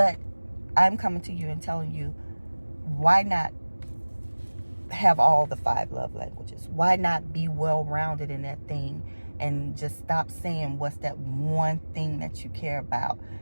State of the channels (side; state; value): both; inverted; correlation -1.00